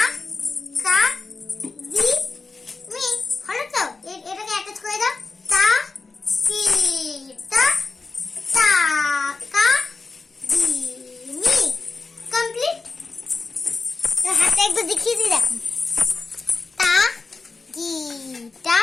কা দি মি, হলো তো? এটাকে অ্যাটাচ করে দাও, তা কি টা টা কা দি মি, কমপ্লিট। হাতে একটু দেখিয়ে দিই, দেখো, তা কি টা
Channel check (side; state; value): right; quieter; 4.0 dB